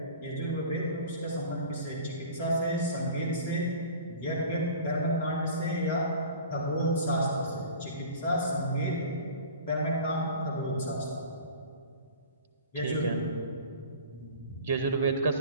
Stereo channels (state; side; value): inverted; both; correlation -0.40